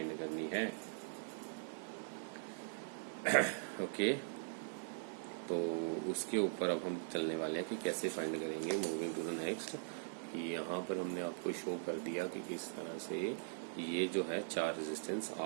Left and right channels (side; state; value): left; silent; digital silence